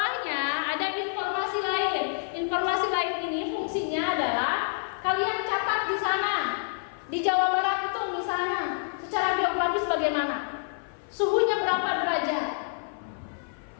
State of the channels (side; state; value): right; silent; 56 dB below the other